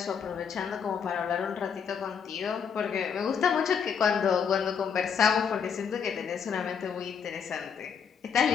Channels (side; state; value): right; quieter; 6.9 dB